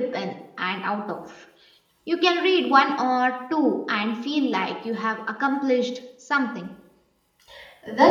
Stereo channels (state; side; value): identical; both; correlation 1.00